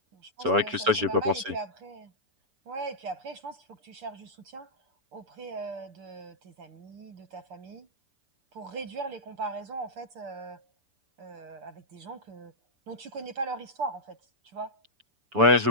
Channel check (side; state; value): left; late; 6.9 ms